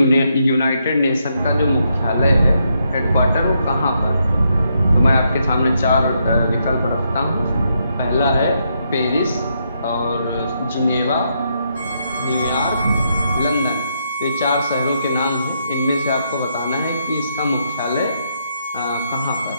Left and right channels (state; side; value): inverted; both; correlation -0.78